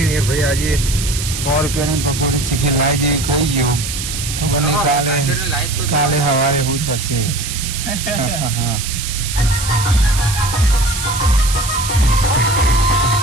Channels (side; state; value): right; noise; hiss, 6 dB below the sound